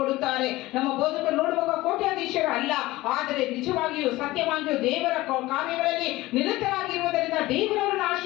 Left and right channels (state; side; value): quieter; right; 18.5 dB